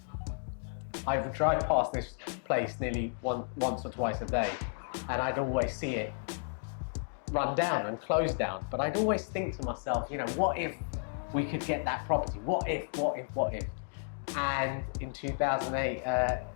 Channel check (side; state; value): right; silent; digital silence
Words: I would drive past this place nearly once or twice a day, and I'd always see it run down and close down. But I'd always think to myself, what if we could get that property? What if? And in